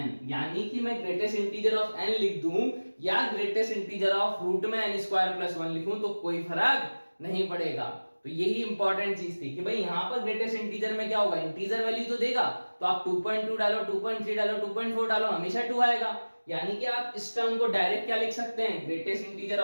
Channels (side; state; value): both; inverted; correlation -1.00